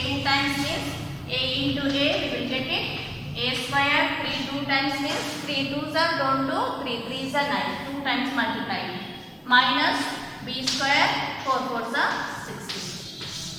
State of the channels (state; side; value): identical; both; correlation 1.00